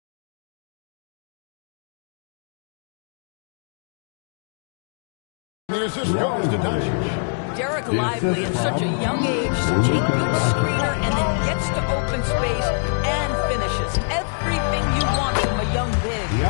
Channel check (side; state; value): right; silent; 63 dB below the other